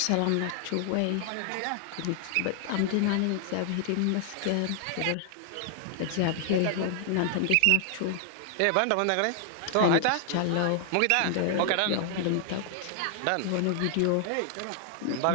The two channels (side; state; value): both; different; correlation 0.00